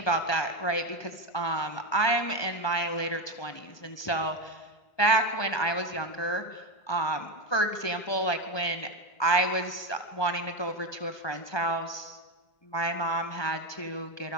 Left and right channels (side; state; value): right; late; 1.2 ms